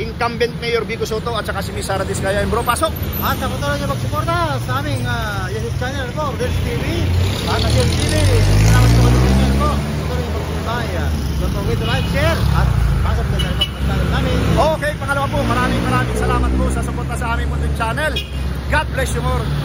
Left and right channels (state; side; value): identical; both; correlation 1.00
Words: mayor Biko Soto at saka si Miss Sara Diskaya. Bro, pasok! At sa patuloy niyo magsuporta sa aming YouTube channel po, Rodel's TV. At Rodel's TV, salamat sa channel po. Patuloy niyo magsuporta. Don't forget to like, share, at pasok na sa channel namin. Okay, pangalawa po, maraming salamat po sa suporta sa aming munting channel. God bless you more.